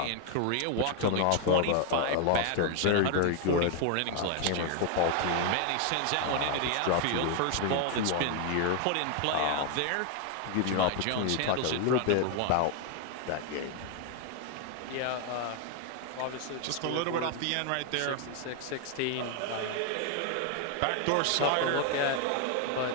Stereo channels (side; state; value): both; different; correlation 0.00